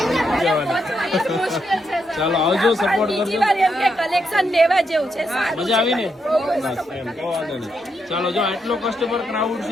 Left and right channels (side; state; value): both; normal; correlation 0.81